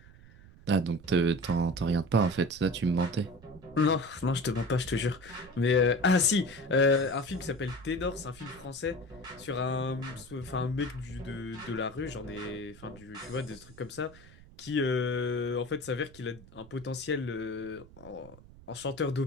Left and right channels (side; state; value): right; noise; rumble, 21 dB below the sound